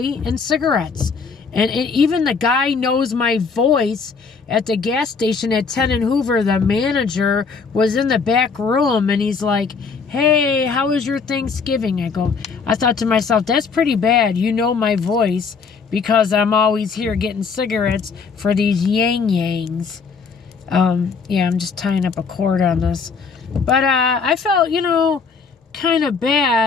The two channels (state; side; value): quieter; right; 5.2 dB